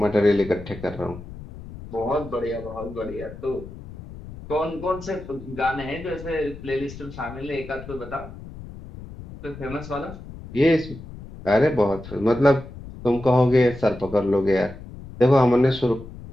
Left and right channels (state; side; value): noise; left; rumble, 14 dB below the sound